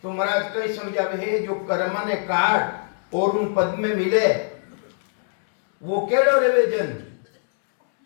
तो महाराज कई समझावे है, जो कर्म ने काट और उन पद में मिले, वो केड़ो रेवे जन।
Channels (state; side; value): silent; right; 64 dB below the other